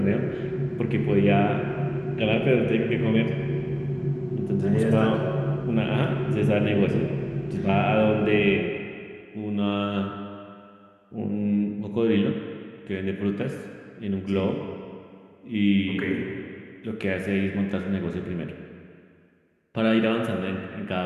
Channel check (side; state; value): both; identical; correlation 1.00